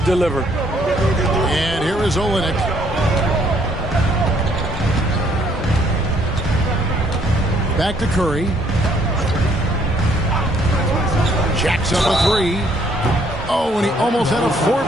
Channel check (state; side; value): normal; both; correlation 0.66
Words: deliver. And here is Olynyk. Back to Curry. Jacks up a 3. Oh, and he almost had a